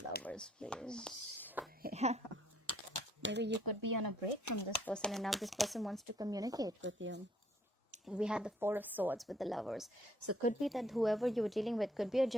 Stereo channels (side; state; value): both; normal; correlation 0.65